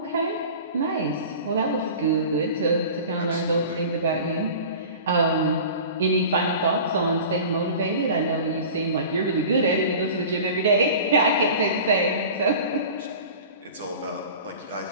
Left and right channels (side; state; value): both; inverted; correlation -0.39